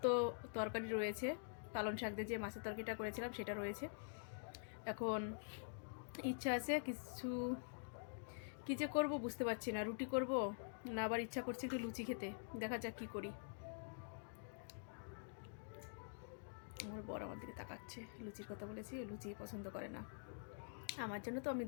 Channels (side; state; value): right; silent; digital silence